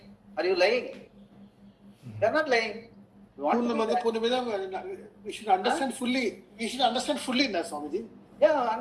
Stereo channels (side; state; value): both; identical; correlation 1.00